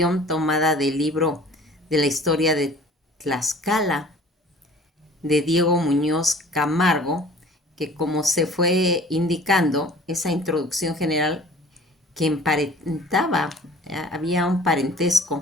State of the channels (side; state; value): both; normal; correlation 0.48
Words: tomada del libro de la historia de Tlaxcala, de Diego Muñoz Camargo, que como se fue indicando, esa introducción general que emparentaba, había un